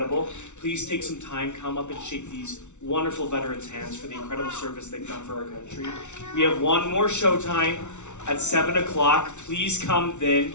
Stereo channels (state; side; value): late; right; 0.83 ms